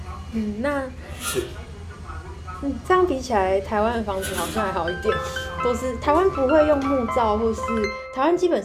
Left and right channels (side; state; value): both; identical; correlation 1.00